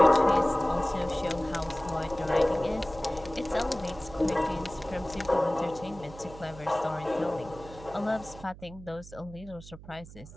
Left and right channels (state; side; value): noise; right; hum, 17 dB below the sound